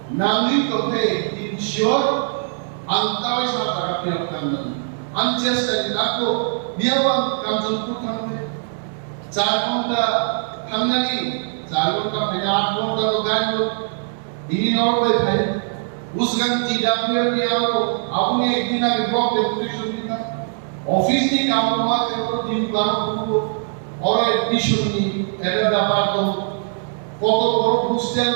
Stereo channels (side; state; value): left; silent; digital silence